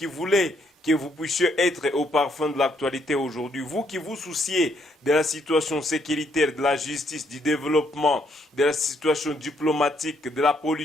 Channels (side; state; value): both; normal; correlation 0.72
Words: voulez que vous puissiez être au parfum de l'actualité aujourd'hui, vous qui vous souciez de la situation sécuritaire, de la justice, du développement, de la situation diplomatique, de la